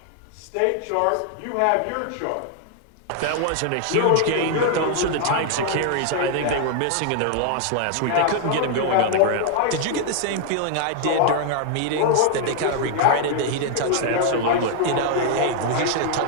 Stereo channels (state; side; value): different; both; correlation 0.00